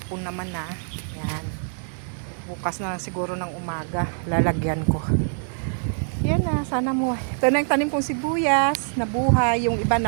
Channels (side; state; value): left; silent; 62 dB below the other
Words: naman na. Yan. Bukas na lang siguro ng umaga lalagyan ko. Yan na, sana mo. Ito na yung tanim kong sibuyas, nabuhay, yung iba